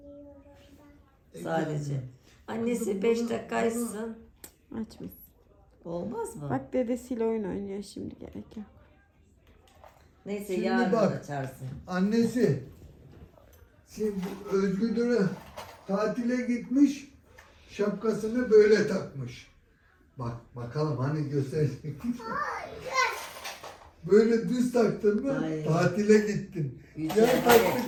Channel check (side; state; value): both; identical; correlation 1.00